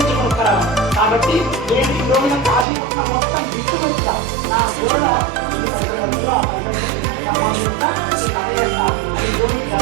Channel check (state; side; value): drops out; left; at 2.7 s